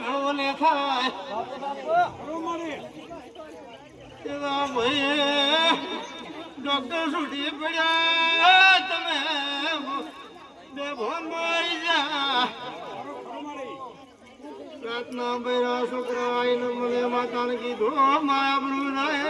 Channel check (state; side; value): identical; both; correlation 1.00